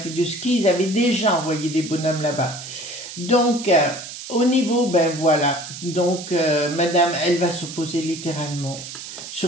de ski, ils avaient déjà envoyé des bonhommes là-bas. Donc, au niveau, ben voilà, donc Madame, elle va s'opposer littéralement,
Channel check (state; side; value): noise; right; hiss, 11 dB below the sound